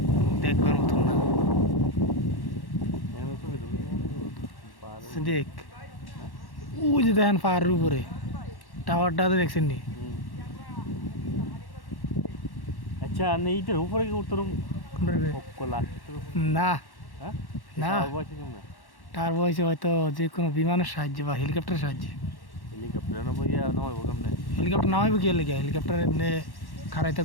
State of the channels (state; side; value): late; right; 1.1 ms